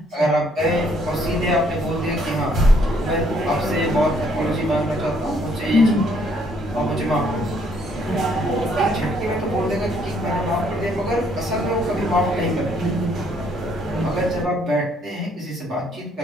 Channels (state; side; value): normal; both; correlation 0.67